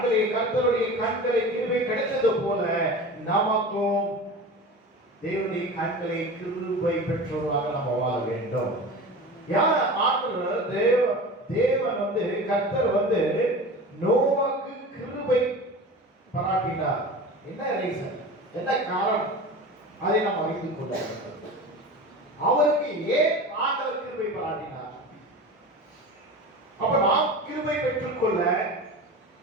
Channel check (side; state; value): both; normal; correlation 0.33